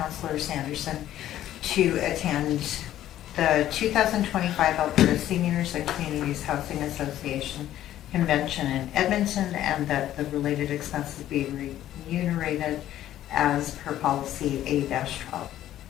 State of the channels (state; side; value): quieter; right; 12.6 dB